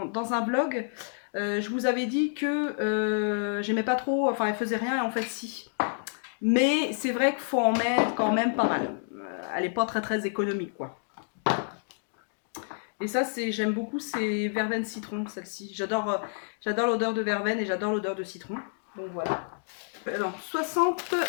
un vlog, je vous avais dit que j'aimais pas trop, enfin elle faisait rien et en fait si. Mais c'est vrai qu'il faut en mettre quand même pas mal. Elle est pas très économique quoi. Et ça j'aime beaucoup, c'est verveine citron celle-ci. J'adore l'odeur de verveine et j'adore l'odeur de citron. Donc voilà. Non,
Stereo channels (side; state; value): right; silent; digital silence